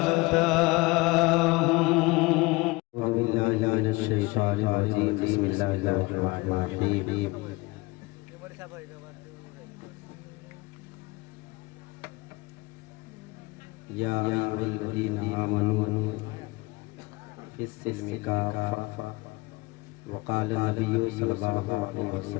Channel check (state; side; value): quieter; right; 23.4 dB